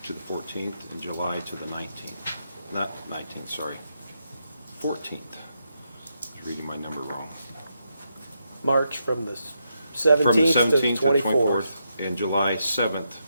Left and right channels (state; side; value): inverted; both; correlation -0.82